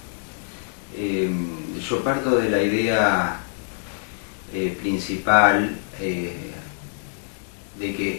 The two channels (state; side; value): silent; right; digital silence